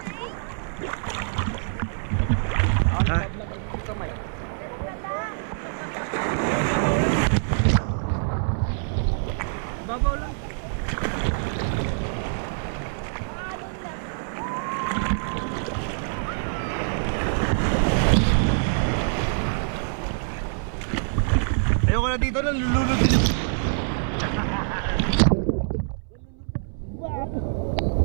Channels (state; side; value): silent; left; 62 dB below the other